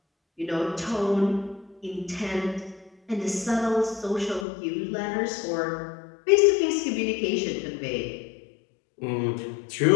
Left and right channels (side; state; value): right; drops out; at 4.5 s